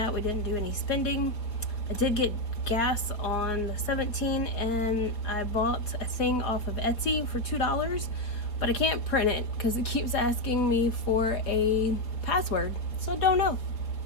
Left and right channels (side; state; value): right; late; 4.2 ms